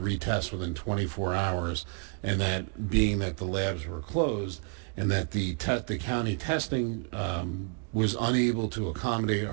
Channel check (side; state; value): left; quieter; 33.6 dB